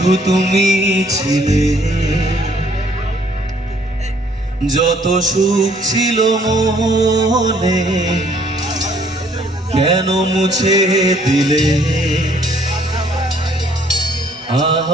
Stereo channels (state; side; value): normal; both; correlation 0.63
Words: তুমি ছিলে, যত সুখ ছিল মনে কেন মুছে দিলে